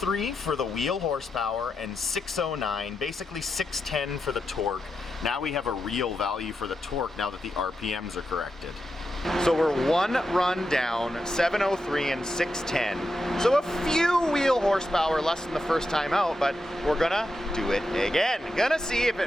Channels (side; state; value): both; normal; correlation 0.87